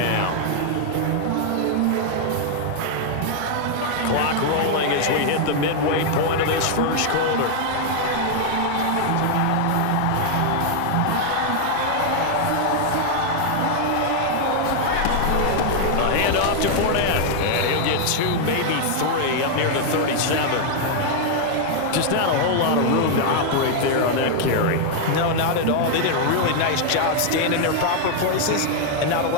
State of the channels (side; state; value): both; different; correlation 0.00